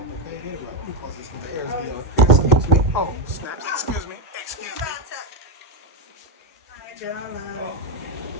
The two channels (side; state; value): both; normal; correlation 0.06